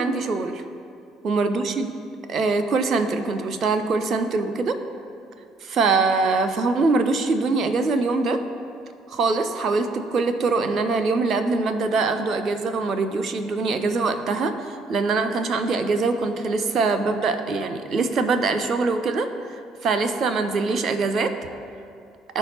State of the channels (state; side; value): quieter; left; 3.4 dB